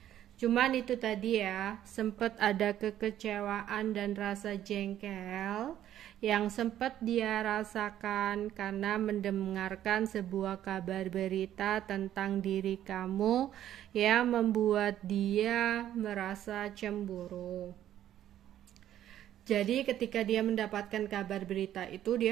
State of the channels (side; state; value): left; quieter; 11.7 dB